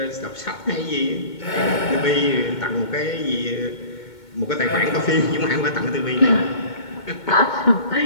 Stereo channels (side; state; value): right; late; 2.2 ms